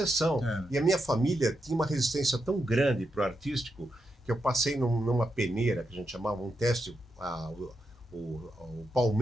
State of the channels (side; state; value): both; normal; correlation 0.84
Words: E a minha família tinha uma resistência tão grande para o artístico que eu passei numa peneira, que a gente chamava um teste, o